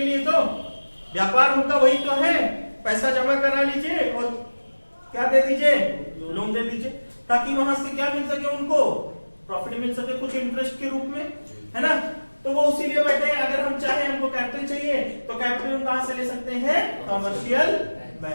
लिए। तो व्यापार उनका वही तो है, पैसा जमा करा लीजिए और क्या दे दीजिए? लोन दे दीजिए, ताकि वहां से क्या मिल सके? उनको प्रॉफिट मिल सके कुछ इंटरेस्ट के रूप में, है ना। तो वो उसी लिए बैठे हैं। अगर हम चाहे, हमको कैपिटल चाहिए, तो कैपिटल हम कहां से ले सकते हैं? कमर्शियल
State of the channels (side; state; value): both; inverted; correlation -1.00